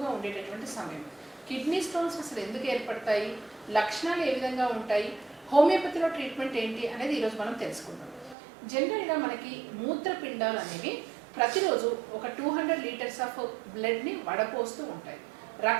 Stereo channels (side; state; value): left; drops out; at 8.3 s